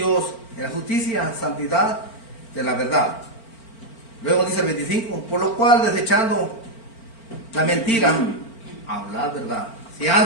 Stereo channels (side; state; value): right; late; 4.4 ms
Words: en la justicia, santidad de la verdad. Luego dice el 25, por lo cual desechando la mentira, hablar verdad. Si